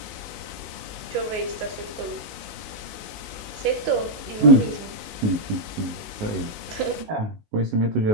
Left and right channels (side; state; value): left; late; 19 ms